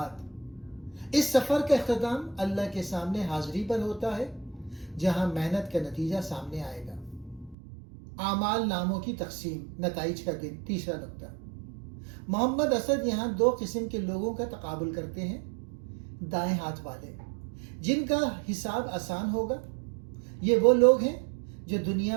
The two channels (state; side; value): drops out; left; at 7.6 s